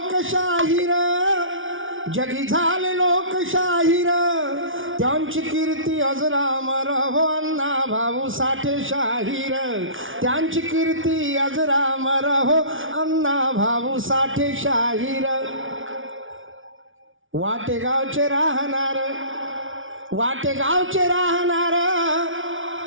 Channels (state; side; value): late; left; 0.57 ms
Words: जगी झाले लोकशाहीर, त्यांची कीर्ती अजरामर हो अण्णा भाऊ साठे शाहीर, त्यांची कीर्ती अजरामर हो अण्णा भाऊ साठे शाहीर. वाटेगावचे राहणार, वाटेगावचे राहणार,